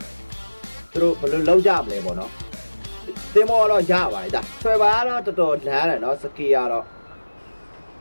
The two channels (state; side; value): inverted; both; correlation -1.00